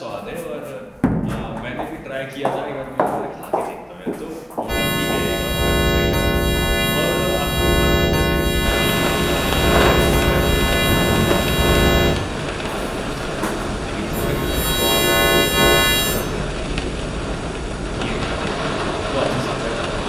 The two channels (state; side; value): identical; both; correlation 1.00